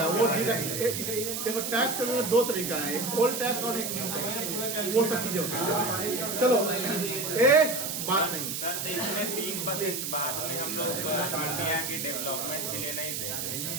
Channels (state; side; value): noise; right; hiss, 3 dB below the sound